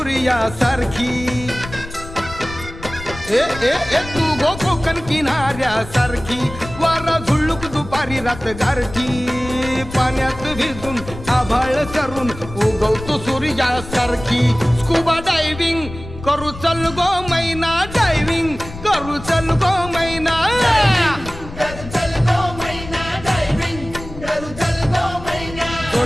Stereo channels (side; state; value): left; noise; rumble, 13 dB below the sound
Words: ए ए ए तू गो कोकण किनाऱ्यासारखी वारा झुळूक दुपारी रात गारठी पाण्यात भिजून आभाळ सरून उगवतो सूर्यासारखी स्कुबा डायव्हिंग करू चल गो मैना डायव्हिंग करू चल गो मैना